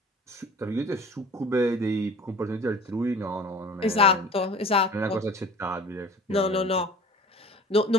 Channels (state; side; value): normal; both; correlation 0.44